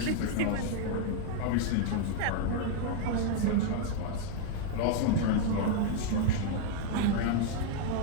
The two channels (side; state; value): both; different; correlation 0.00